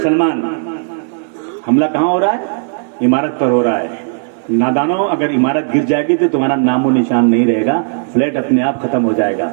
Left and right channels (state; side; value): silent; left; 70 dB below the other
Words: हमला कहां हो रहा है? इमारत पर हो रहा है। नादानों, अगर इमारत गिर जाएगी तो तुम्हारा नामो निशान नहीं रहेगा, फ्लैट अपने आप खत्म हो जाएगा।